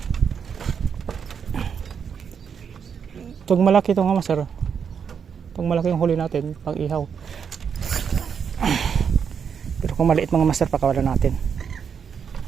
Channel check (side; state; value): left; quieter; 7.0 dB